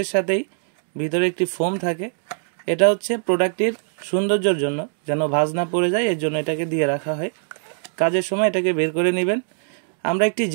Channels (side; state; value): left; silent; digital silence